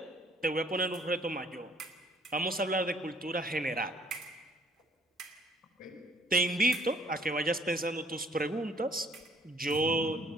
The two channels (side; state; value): both; normal; correlation 0.60